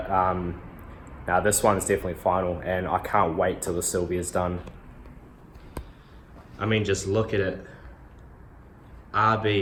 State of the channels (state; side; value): identical; both; correlation 1.00